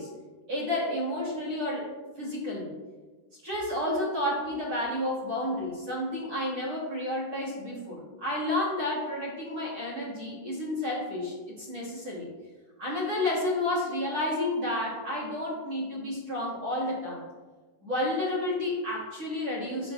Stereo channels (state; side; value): late; left; 9.9 ms